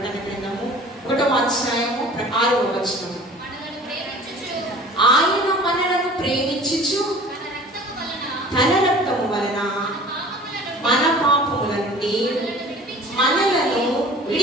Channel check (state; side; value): normal; both; correlation 0.45